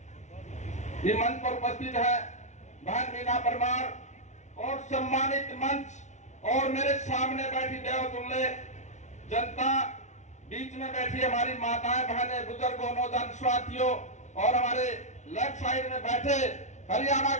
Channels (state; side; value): late; right; 0.34 ms